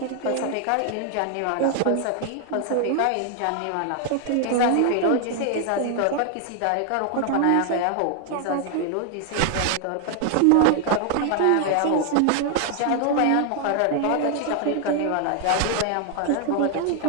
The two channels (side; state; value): both; different; correlation 0.00